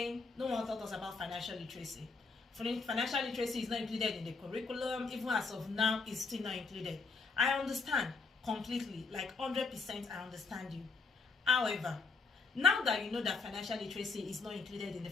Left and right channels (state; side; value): quieter; right; 4.4 dB